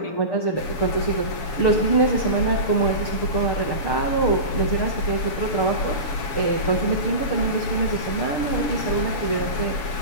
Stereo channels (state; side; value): late; right; 7.3 ms